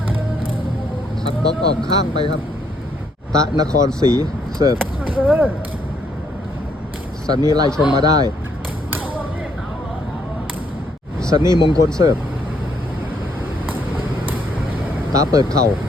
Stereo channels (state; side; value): normal; both; correlation 0.71